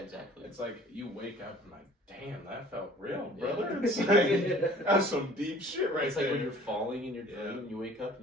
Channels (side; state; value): both; normal; correlation 0.50